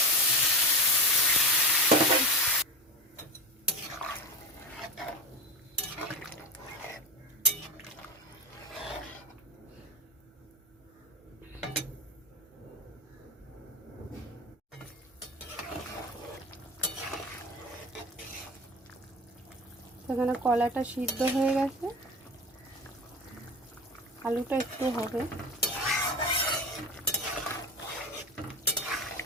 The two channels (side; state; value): both; normal; correlation 0.25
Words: সেখানে কলাটা সিদ্ধ হয়ে গেছে, আলুটা একটু হবে।